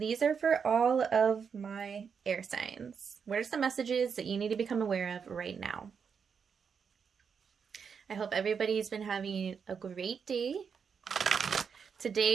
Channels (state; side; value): quieter; left; 6.5 dB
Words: are for all of my air signs. What are some messages that you need to become aware of right now? I hope everybody's been having a great day.